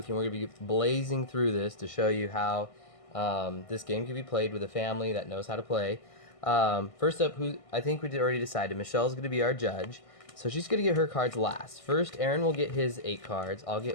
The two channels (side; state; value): right; late; 1.6 ms